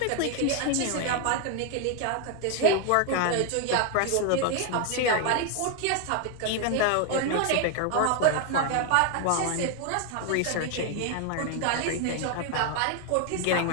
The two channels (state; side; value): different; both; correlation 0.01